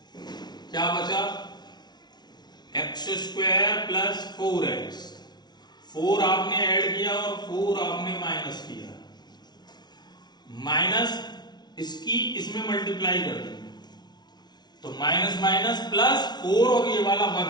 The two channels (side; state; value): right; late; 0.20 ms